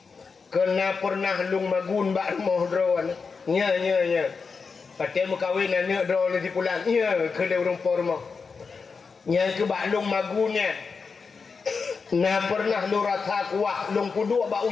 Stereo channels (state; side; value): quieter; right; 5.1 dB